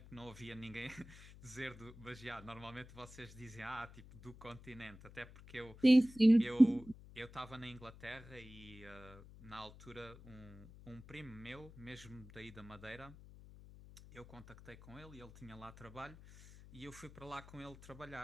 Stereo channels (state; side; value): noise; left; hum, 18 dB below the sound